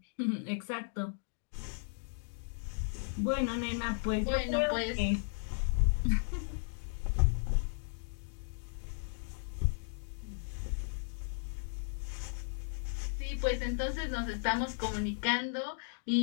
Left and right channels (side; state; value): right; silent; digital silence